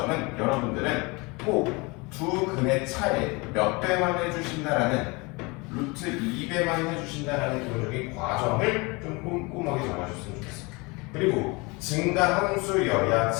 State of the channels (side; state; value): right; quieter; 26.6 dB